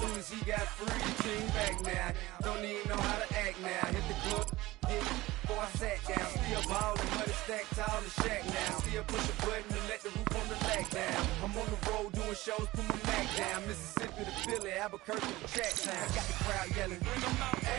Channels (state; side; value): quieter; left; 18.8 dB